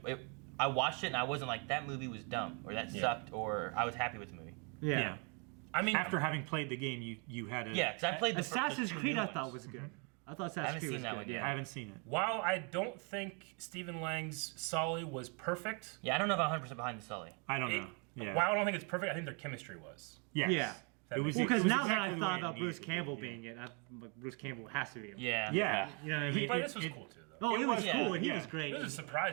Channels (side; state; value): left; quieter; 35.3 dB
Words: I watched it and I wasn't like that movie was dumb or that sucked or I was happy with the movie. Yeah. I mean, After having played the game, you had a... Yeah, because I played the Assassin's the two Creed new I thought ones. was good. I thought I Assassin's haven't Creed seen was that good. one Yeah. yet. I haven't seen it. while I don't think Stephen Lang's Sully was perfect, Yeah, I don't know if I'm 100% behind the Sully. I don't know. Yeah. while I don't think it's perfect, I think their chemistry was. Yes. Yeah. That It was makes Well, because it was now that exactly I the thought way it about Bruce needed to be, Campbell yeah. being it, Bruce Campbell has to be him. Yeah. Yeah. You know what I mean? But this was cool too, though. Oh, it was yeah, cool, and he yeah. was great. It was a